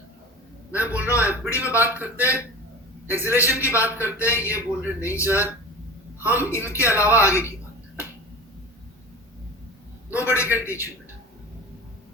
मैं बोल रहा हूँ एफबीडी में बात करते हैं, एक्सेलरेशन की बात करते हैं, ये बोल रहे नहीं सर हम इनके अलावा आगे की बात करें। नोबडी कैन टीच यू बेटा।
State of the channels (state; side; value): normal; both; correlation 0.34